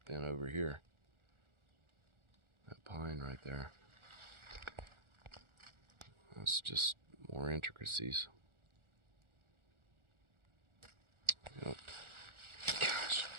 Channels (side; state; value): left; late; 1.4 ms